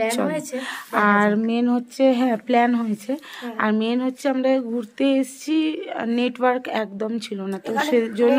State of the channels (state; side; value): identical; both; correlation 1.00